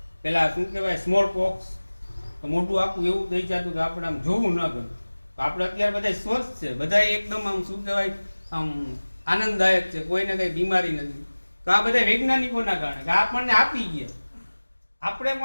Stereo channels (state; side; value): inverted; both; correlation -1.00